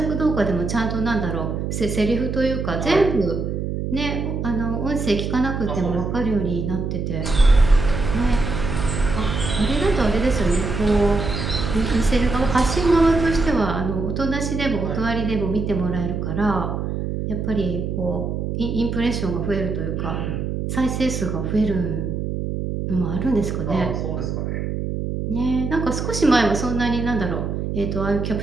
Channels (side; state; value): right; noise; hum, 3 dB below the sound